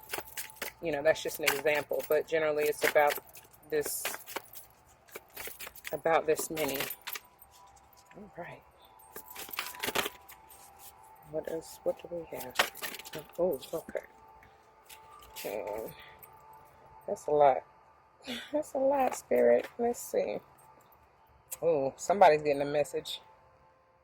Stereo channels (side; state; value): both; identical; correlation 1.00